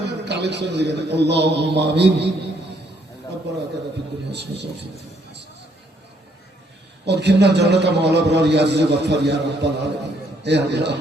কালেকশন দিবেন। আল্লাহুম্মা আমিন। আতানা ফিদ দুনিয়া হাসানাতাও ওয়া ফিল আখিরাতি ওয়াদখিলনা জান্নাতা মা আল আবরার ইয়া আজিজ গফফার ইয়া রাব্বাল আলামিন। হে আল্লাহ,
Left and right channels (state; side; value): normal; both; correlation 0.69